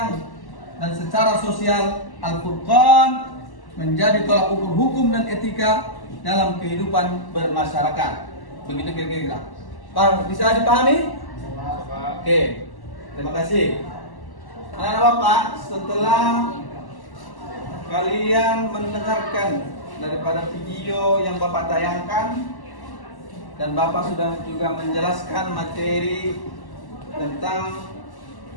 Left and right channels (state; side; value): late; right; 1.1 ms